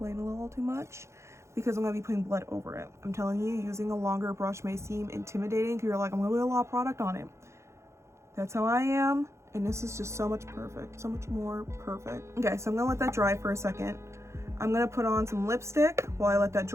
a little too much because I'm gonna be putting blood over it. I'm telling you, using a longer brush may seem intimidating because you're like, I'm gonna put a lot of product on it. That's how I am. And this is just so much more perfect. Okay, so I'm gonna let that dry for a second. I'm gonna put on some lipstick while I let that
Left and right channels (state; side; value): late; left; 0.14 ms